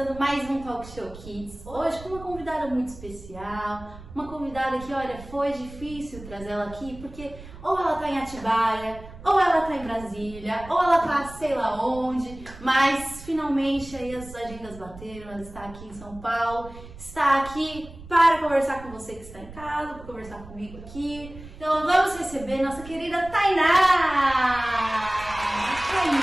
mais um Talk Show Kids, hoje com uma convidada muito especial, uma convidada que, olha, foi difícil trazer ela aqui, porque ou ela tá em Atibaia, ou ela tá em Brasília, ou ela tá sei lá onde, mas finalmente aí as agendas bateram, ela está aqui em São Paulo, está aqui para conversar com você que está em casa, para conversar comigo aqui. Então vamos receber nossa querida Tainá!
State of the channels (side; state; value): right; noise; rumble, 16 dB below the sound